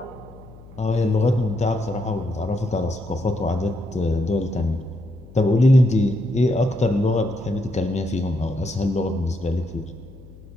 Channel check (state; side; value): noise; left; hum, 20 dB below the sound